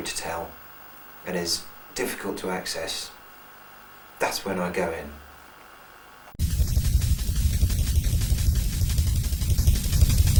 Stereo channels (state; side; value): identical; both; correlation 1.00